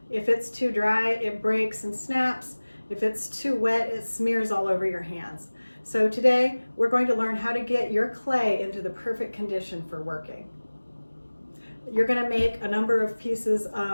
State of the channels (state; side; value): inverted; both; correlation -1.00